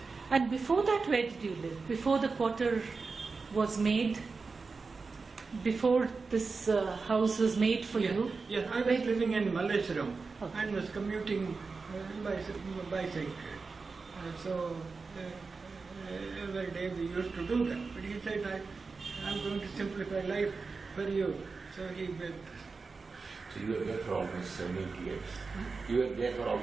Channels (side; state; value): left; quieter; 4.4 dB